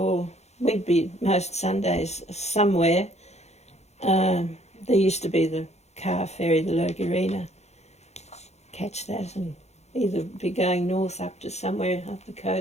we'd be most Sundays somewhere. There used to be the car ferry, the Logurina. Catch that and either be going north up to somewhere up the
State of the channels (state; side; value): late; right; 0.32 ms